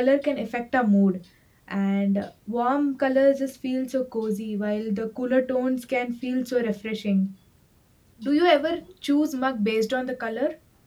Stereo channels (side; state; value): both; identical; correlation 1.00